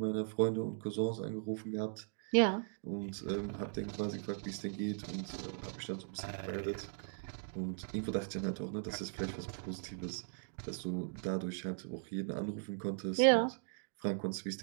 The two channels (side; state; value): left; silent; digital silence